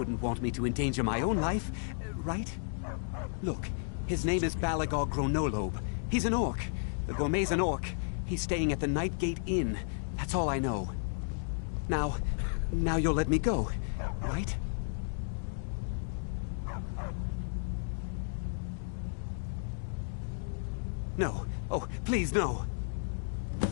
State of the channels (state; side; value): silent; right; digital silence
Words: want me to endanger my own life, right? Look, his name is Balagog Gronolobe. He's an orc. The gourmet's an orc. He's staying at the Nightgate Inn. That's all I know. Now you'll let me go, right? No. Oh, please, no.